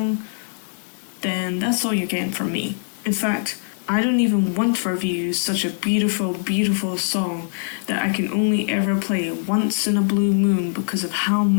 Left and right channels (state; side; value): silent; right; 61 dB below the other